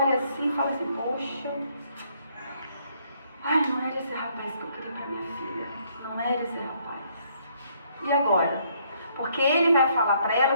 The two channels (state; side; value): inverted; both; correlation -0.68